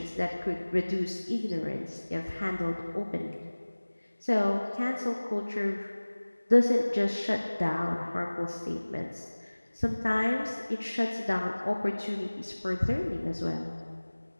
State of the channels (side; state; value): both; inverted; correlation -1.00